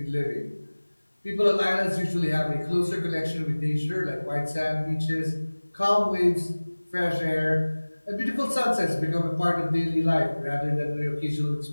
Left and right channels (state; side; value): inverted; both; correlation -1.00